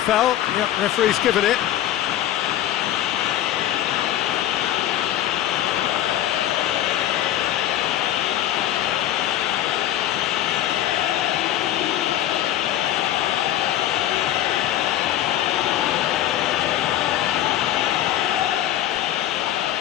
foul. Yep, referee's given it.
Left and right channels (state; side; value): quieter; right; 12.5 dB